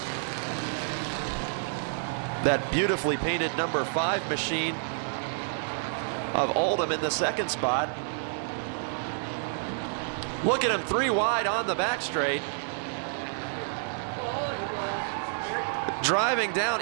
That beautifully painted number 5 machine of Oldham in the second spot. Look at him, 3 wide on the back straight. Driving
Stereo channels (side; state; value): left; silent; digital silence